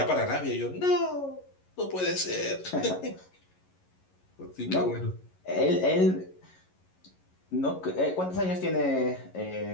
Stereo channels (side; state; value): right; late; 11 ms